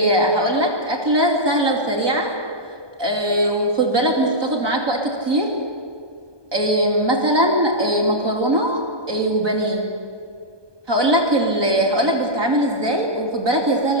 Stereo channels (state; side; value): late; left; 1.2 ms